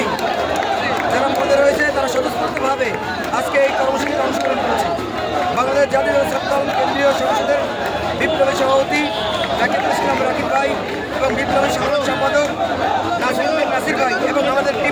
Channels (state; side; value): identical; both; correlation 1.00